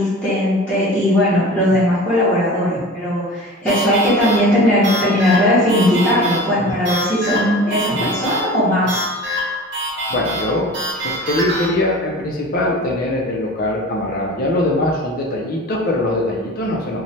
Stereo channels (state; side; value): normal; both; correlation 0.37